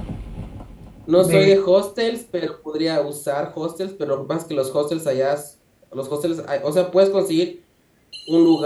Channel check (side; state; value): both; identical; correlation 1.00